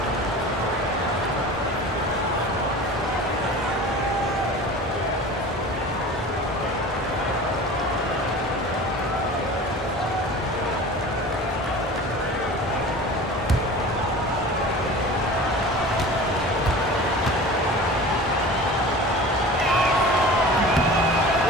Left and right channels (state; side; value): normal; both; correlation 0.38